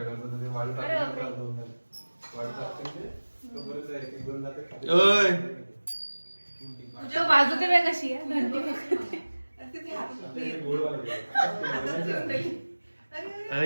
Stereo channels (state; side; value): inverted; both; correlation -1.00